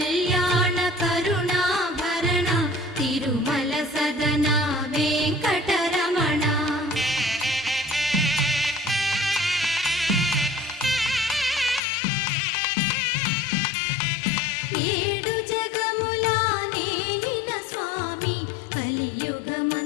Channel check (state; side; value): drops out; right; at 11.8 s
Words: కరుణాభరణ తిరుమల సదన వెంకటరమణ ఏడు జగముల నేలిన స్వామి